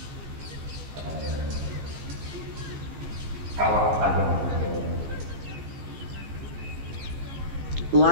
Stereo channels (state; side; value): late; left; 15 ms